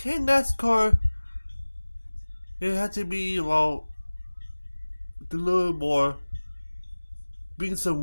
NASCAR it had to be a little more bring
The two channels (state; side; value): inverted; both; correlation -1.00